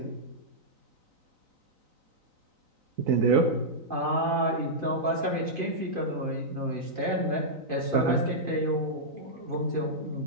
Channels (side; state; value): left; late; 3.9 ms